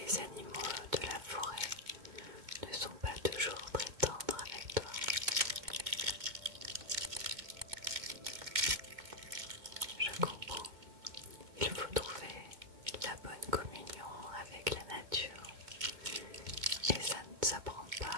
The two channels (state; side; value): late; left; 2.2 ms